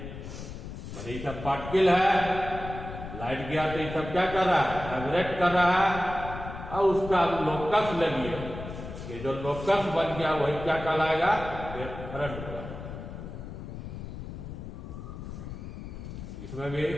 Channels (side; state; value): left; noise; rumble, 10 dB below the sound